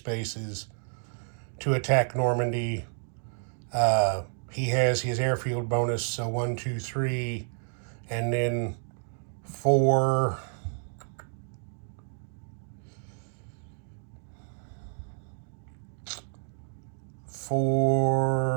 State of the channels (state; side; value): silent; left; 58 dB below the other